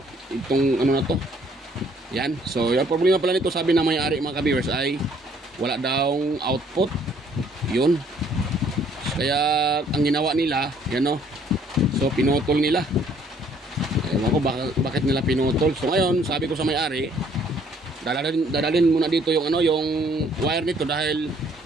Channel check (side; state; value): both; normal; correlation 0.62